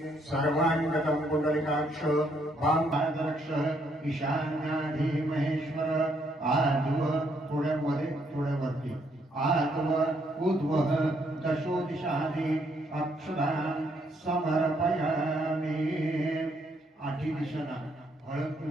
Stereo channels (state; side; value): normal; both; correlation 0.72